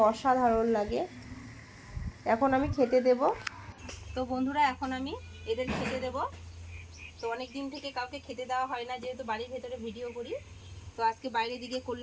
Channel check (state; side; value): identical; both; correlation 1.00